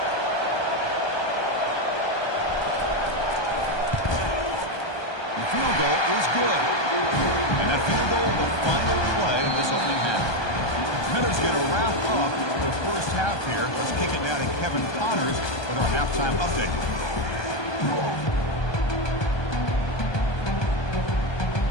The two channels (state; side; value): late; right; 1.2 ms